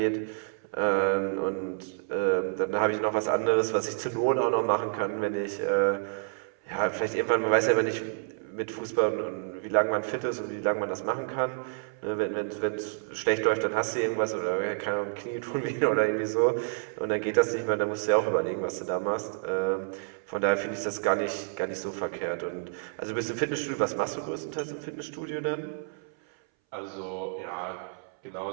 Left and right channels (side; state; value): left; silent; 59 dB below the other